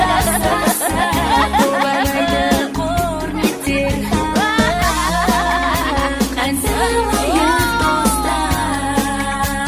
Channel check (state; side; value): identical; both; correlation 1.00